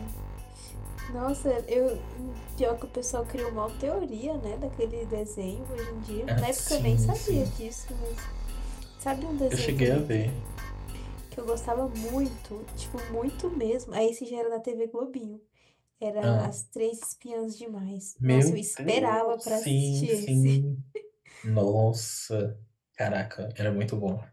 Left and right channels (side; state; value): both; identical; correlation 1.00